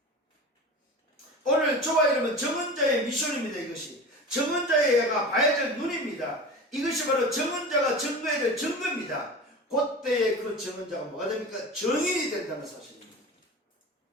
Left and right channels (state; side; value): normal; both; correlation 0.32